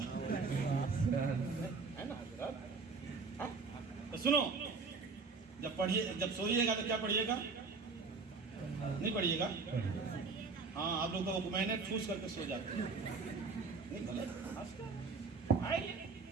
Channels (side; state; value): left; quieter; 4.5 dB